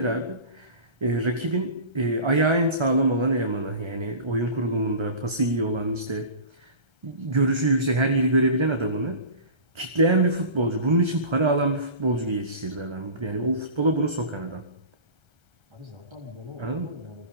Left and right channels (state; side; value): late; left; 1.3 ms